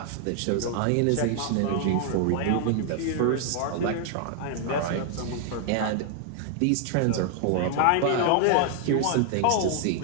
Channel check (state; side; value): different; both; correlation 0.00